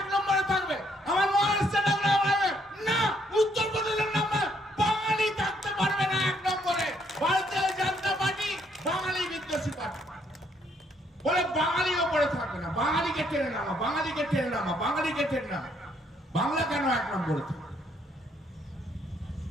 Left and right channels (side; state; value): both; normal; correlation 0.70